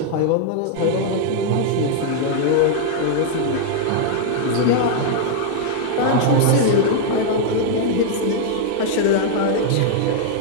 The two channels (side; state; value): both; different; correlation 0.00